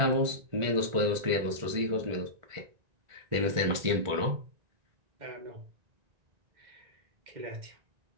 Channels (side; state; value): left; late; 1.4 ms